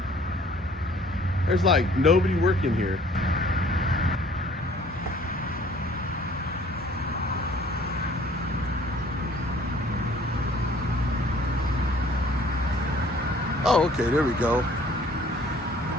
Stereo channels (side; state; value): both; normal; correlation 0.55